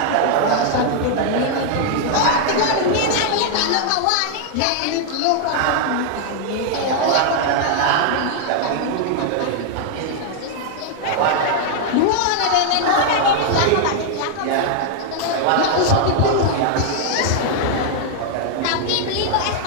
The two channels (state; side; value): different; both; correlation 0.00